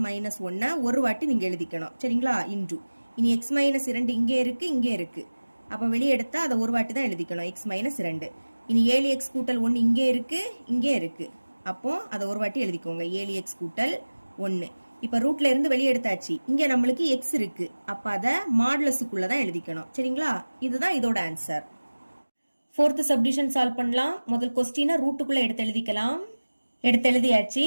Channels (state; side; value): inverted; both; correlation -1.00